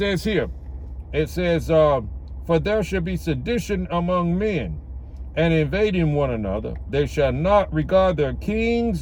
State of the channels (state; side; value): identical; both; correlation 1.00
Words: here, it says, for there shall be sedition among men, and invading one another. They shall not regard their